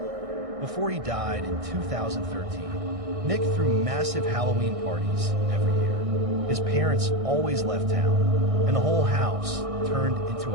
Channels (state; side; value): late; left; 1.6 ms